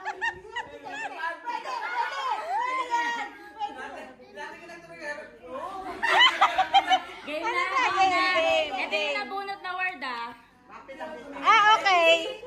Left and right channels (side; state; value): both; identical; correlation 1.00